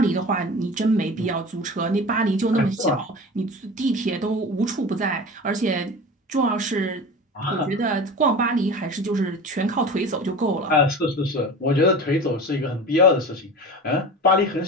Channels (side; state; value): both; normal; correlation 0.33